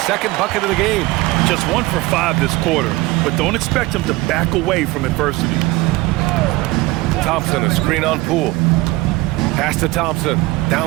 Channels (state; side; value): quieter; left; 20.4 dB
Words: bucket of the game. Just 1 for 5 this quarter, but don't expect him to back away from adversity. Thompson, a screen on Poole. Pass to Thompson,